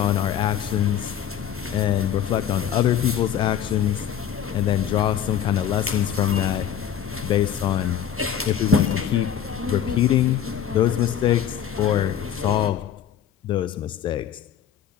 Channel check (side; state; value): right; quieter; 9.3 dB